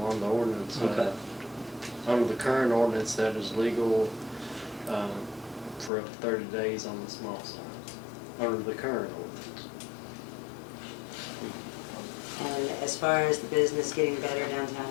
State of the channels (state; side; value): drops out; right; at 5.9 s